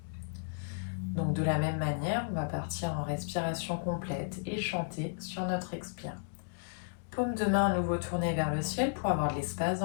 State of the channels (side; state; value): right; silent; digital silence